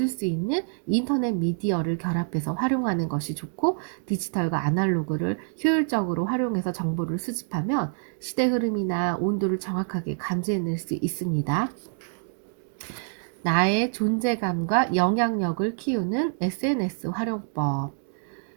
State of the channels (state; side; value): silent; left; 58 dB below the other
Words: 수 있는 인터넷 미디어를 결합해서 활용하는 것이 좋고, 디지털과 아날로그를 효율적으로 활용해서 정보를 수집하면 시대 흐름이나 온도를 정확하게 감지해낼 수 있습니다. 나의 존재감과 영향력을 키우는 SNS 활용법.